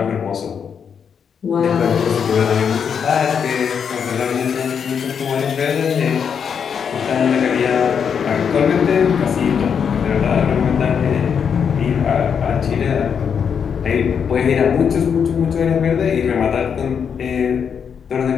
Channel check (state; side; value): quieter; right; 7.1 dB